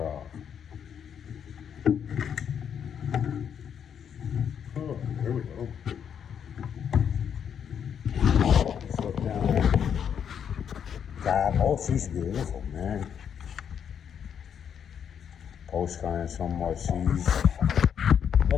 Oh, there we go. Let's look down there. God, oh, she's beautiful, man. Post kind of somewhat seized.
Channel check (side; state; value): right; quieter; 8.1 dB